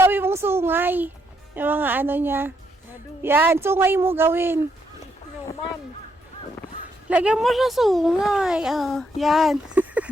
mong sungay. Yung mga niya. Madu. Yan, sungay mo gawin. Snowman. Lagyan mo siya sungay. Yan.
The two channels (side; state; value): both; normal; correlation 0.76